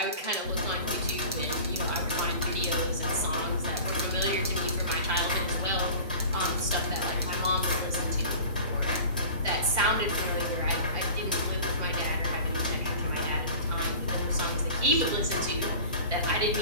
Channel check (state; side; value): inverted; both; correlation -0.39